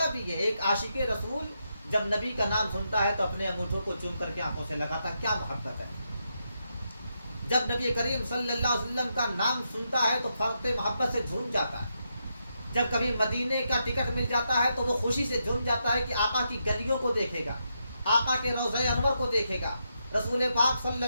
بھی ہے۔ ایک عاشق رسول جب نبی کا نام سنتا ہے تو اپنے انگوٹھوں کو چوم کر کے آنکھوں سے لگاتا ہے، کیا محبت ہے۔ جب نبی کریم صلی اللہ علیہ وسلم کا نام سنتا ہے تو فرق محبت سے جھوم جاتا ہے۔ جب کبھی مدینے کا ٹکٹ مل جاتا ہے تو وہ خوشی سے جھوم جاتا ہے کہ آقا کی گلیوں کو دیکھے گا، آقا کے روضہ انور کو دیکھے گا، رسول پاک صلی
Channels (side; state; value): both; inverted; correlation -0.83